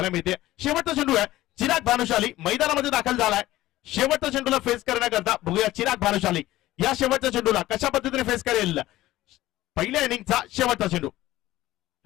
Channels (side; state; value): right; quieter; 16.0 dB